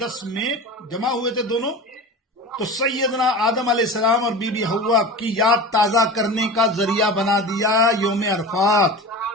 میں جمع ہوئے تھے دونوں، تو سیدنا آدم علیہ السلام اور بی بی حوا کی یاد تازہ کرنے کا ذریعہ بنا دیا یوم عرفات۔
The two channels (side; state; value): both; normal; correlation 0.32